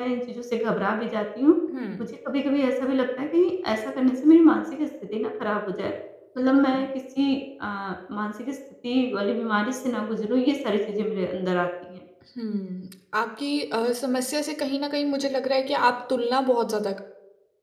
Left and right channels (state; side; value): identical; both; correlation 1.00